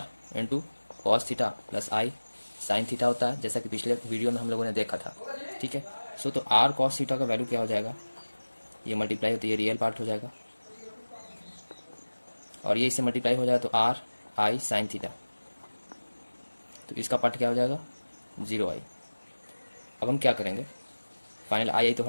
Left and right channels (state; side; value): inverted; both; correlation -1.00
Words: into cos theta plus आई साइन थीटा होता है, जैसा कि पिछले वीडियो में हम लोगों ने देखा था, ठीक है। सो तो r कॉस थीटा का वैल्यू क्या हो जाएगा, ये मल्टीप्लाई होती है, रियल पार्ट हो जाएगा, और ये इससे मल्टीप्लाई हो जाएगा तो r आई साइन थीटा, तो इसका पार्ट क्या हो जाएगा 0i। अब हम क्या करेंगे, फाइनल आई तो